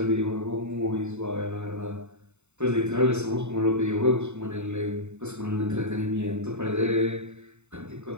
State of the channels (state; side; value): late; left; 0.82 ms